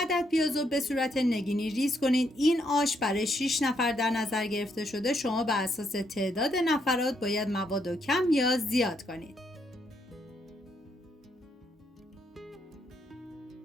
پیاز رو به صورت نگینی ریز کنید. این آش برای 6 نفر در نظر گرفته شده. شما بر اساس تعداد نفرات باید مواد رو کم یا زیاد کنید.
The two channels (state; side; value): normal; both; correlation 0.75